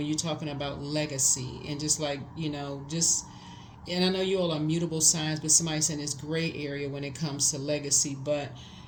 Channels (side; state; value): both; identical; correlation 1.00